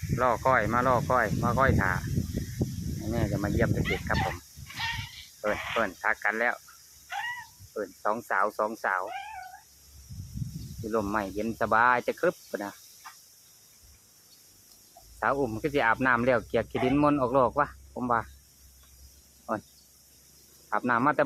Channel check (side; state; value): both; identical; correlation 1.00